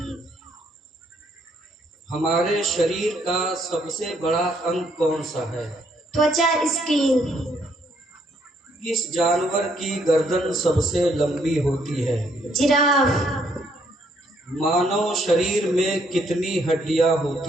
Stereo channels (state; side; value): normal; both; correlation 0.70